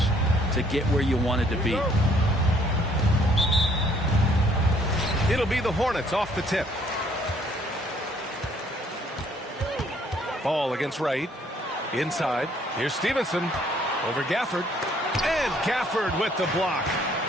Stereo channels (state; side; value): normal; both; correlation 0.63